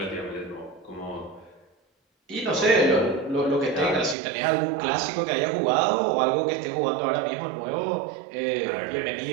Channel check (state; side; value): drops out; left; at 4.2 s